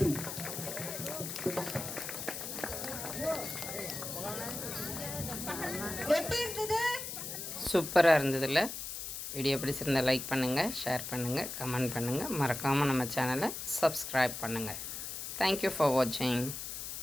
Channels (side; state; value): left; noise; hiss, 6 dB below the sound